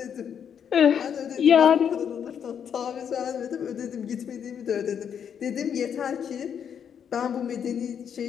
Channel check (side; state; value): right; quieter; 8.0 dB